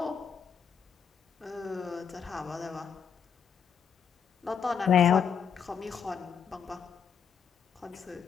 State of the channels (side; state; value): right; quieter; 7.0 dB